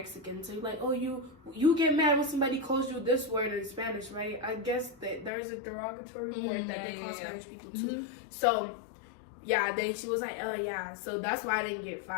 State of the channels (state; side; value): drops out; right; at 5.3 s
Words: so you're like, oh, you get mad when somebody calls you this word in Spanish, right? I guess that there's a derogatory word that they call Spanish people too. So yeah, then she was like, oh yeah, so that's why I didn't get